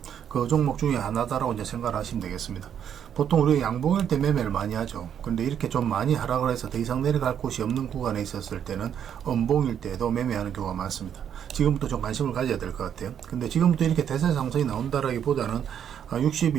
그 종목 중에 하나다라고 이제 생각을 하시면 되겠습니다. 보통 우리가 양봉일 때 매매를 많이 하죠. 근데 이렇게 좀 많이 하락을 해서 더 이상 내려갈 곳이 없는 구간에 있었을 때는 음봉일 때도 매매하는 경우가 많습니다. 지금부터 좀 관심을 가져야 될 것 같아요. 근데 지금부터 이렇게 대세 상승이 나온다라기보다는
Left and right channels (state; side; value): quieter; left; 8.9 dB